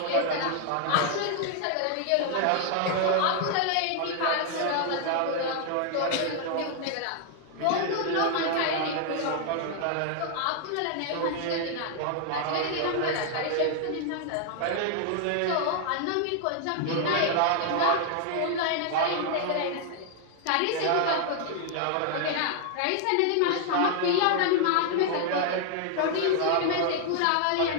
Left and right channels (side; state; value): both; different; correlation 0.00